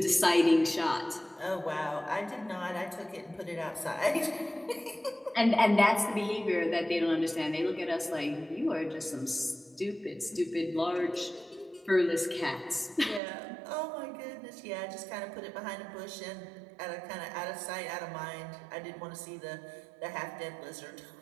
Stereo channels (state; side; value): drops out; left; at 13.2 s